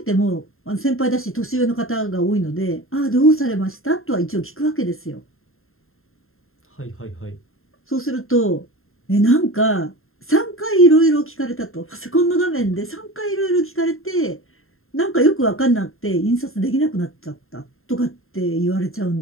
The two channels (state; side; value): late; right; 0.61 ms